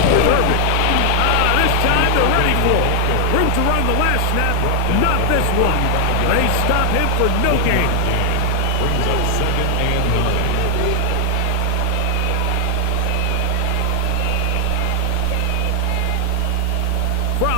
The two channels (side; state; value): both; different; correlation 0.00